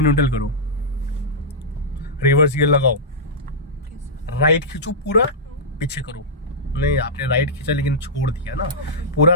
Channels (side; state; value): both; normal; correlation -0.12